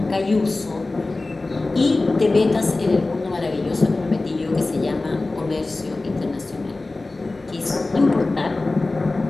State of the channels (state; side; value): quieter; right; 3.2 dB